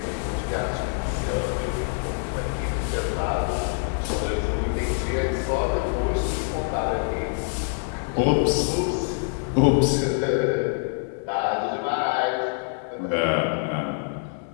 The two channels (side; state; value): right; silent; digital silence